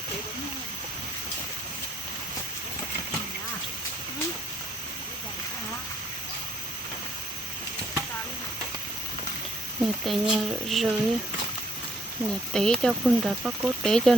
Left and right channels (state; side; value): normal; both; correlation 0.67